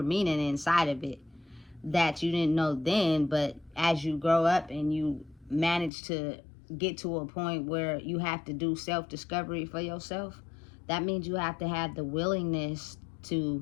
meaning inside of it that you didn't know then. But as you grow up and you manage to get to a point where you have to do self-discovery for yourself, that means you have to have the willingness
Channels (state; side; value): drops out; right; at 5.9 s